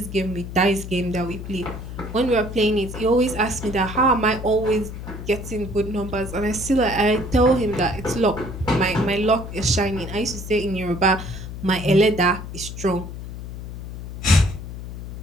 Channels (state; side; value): noise; left; hum, 9 dB below the sound